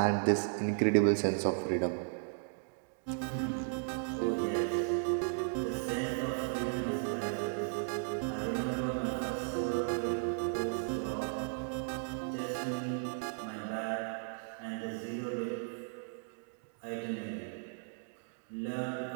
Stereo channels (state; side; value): silent; left; digital silence